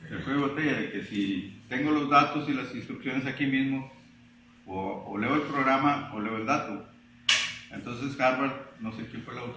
El cuello de botella de que si tengo los datos y las instrucciones aquí mismo, o leo el programa o leo el dato. Entonces Harvard, no sé quién fue el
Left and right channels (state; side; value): identical; both; correlation 1.00